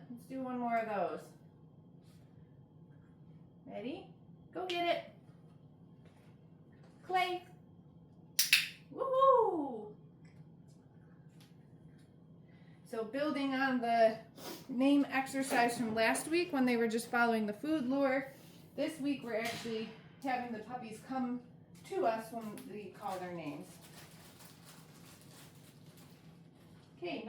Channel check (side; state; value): both; identical; correlation 1.00